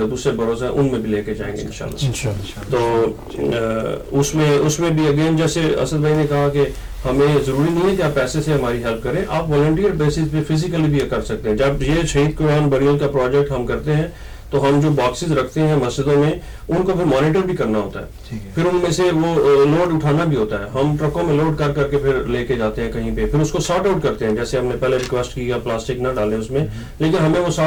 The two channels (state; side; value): identical; both; correlation 1.00